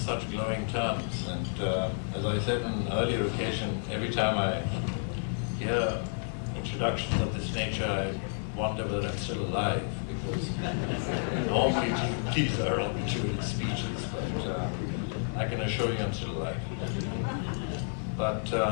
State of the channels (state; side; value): silent; right; digital silence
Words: glowing terms. And as I said on an earlier occasion, every time I hear introductions of this nature, I wonder whether I'm still alive, because normally these are obituary speeches, but I can assure you I'm still alive. But